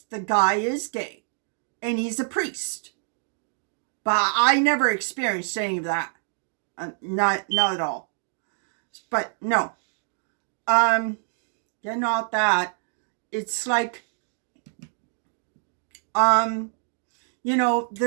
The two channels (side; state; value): left; silent; digital silence